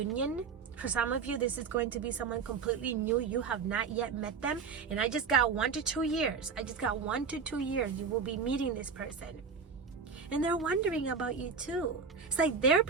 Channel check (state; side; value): quieter; left; 5.6 dB